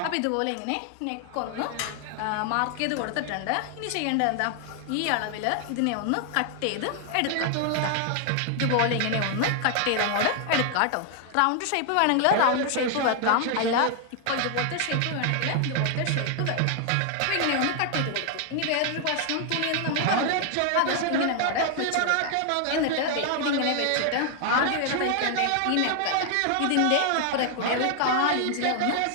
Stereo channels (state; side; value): different; both; correlation 0.00